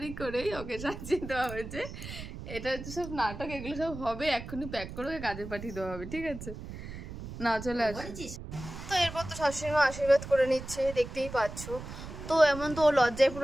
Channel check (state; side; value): noise; right; rumble, 10 dB below the sound